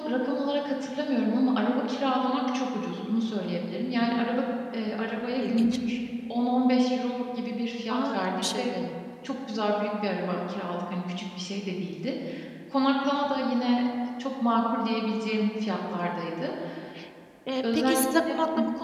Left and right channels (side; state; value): both; identical; correlation 1.00